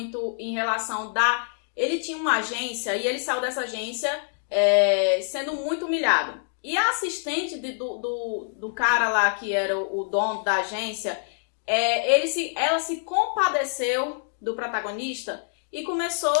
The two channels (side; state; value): right; silent; digital silence